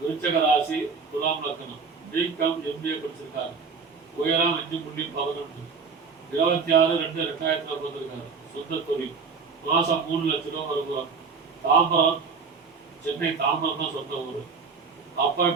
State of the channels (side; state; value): left; quieter; 5.1 dB